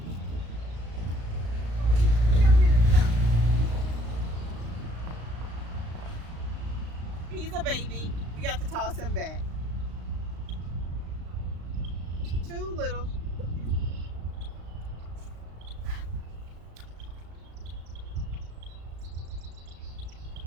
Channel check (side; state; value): left; late; 35 ms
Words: He's a baby. We got to toss him back. Too little.